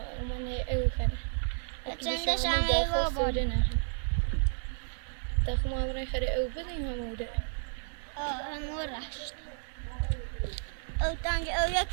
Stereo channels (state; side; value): silent; left; digital silence